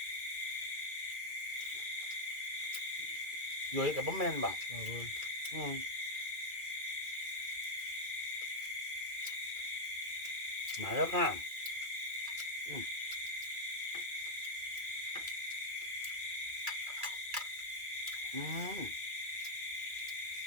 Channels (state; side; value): late; left; 2.3 ms